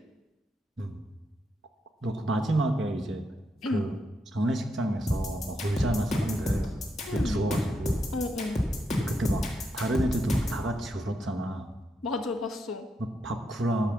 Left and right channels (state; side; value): normal; both; correlation 0.82